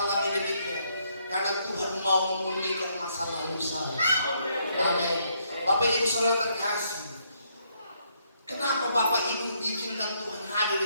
demikian? Karena Tuhan mau memulihkan masa lalu saya. Amin. Bapak Ibu Saudara terkasih, kenapa Bapak Ibu diizinkan Tuhan hadir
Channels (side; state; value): both; inverted; correlation -0.73